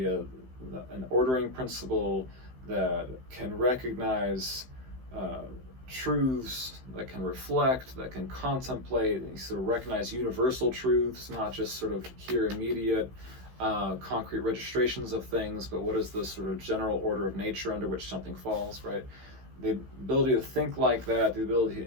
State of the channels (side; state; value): left; late; 16 ms